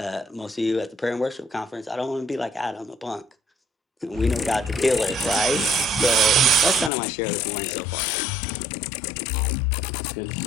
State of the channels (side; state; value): right; drops out; at 6.9 s